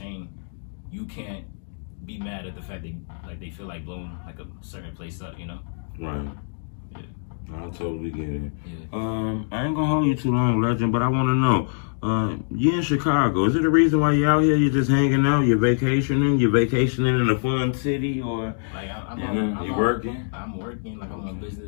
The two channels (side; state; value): right; silent; digital silence